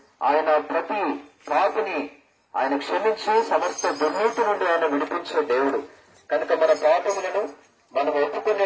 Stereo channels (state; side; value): identical; both; correlation 1.00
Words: ఆయన ప్రతి పాపిని ఆయన క్షమించి సమస్త దుర్నీతి నుండి ఆయన విడిపించే దేవుడు. కనుక మన పాపములను మనం